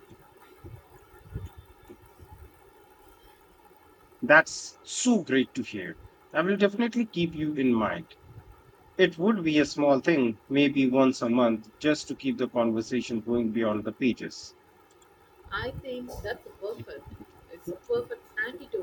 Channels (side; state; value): both; identical; correlation 1.00